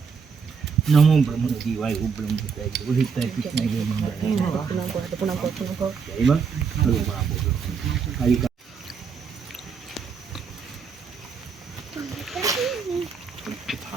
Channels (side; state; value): left; quieter; 5.9 dB